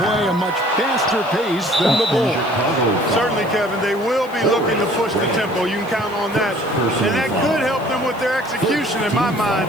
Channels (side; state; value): left; noise; hiss, 24 dB below the sound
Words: a much faster pace than the Bulls. Certainly, Kevin, they will be looking to push the tempo. You can count on that. And that could help them with their execution, in my